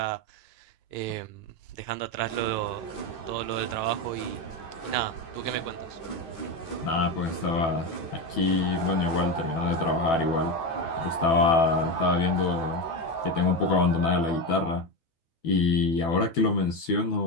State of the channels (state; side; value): late; right; 12 ms